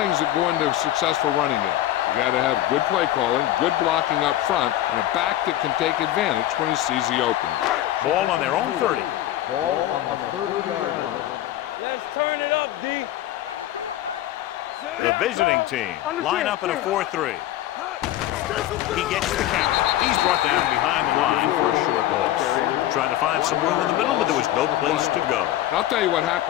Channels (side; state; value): right; quieter; 13.7 dB